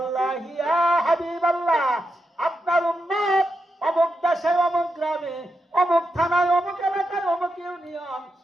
ইয়া হাবিবাল্লাহ, আপনার উম্মত অমুক দেশে, অমুক গ্রামে, অমুক থানায়, অমুক এলাকায়, অমুক ইউনিয়ন,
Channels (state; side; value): normal; both; correlation 0.86